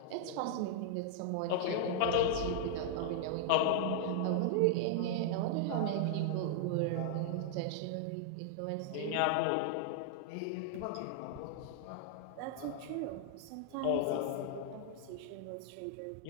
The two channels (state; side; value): different; both; correlation -0.01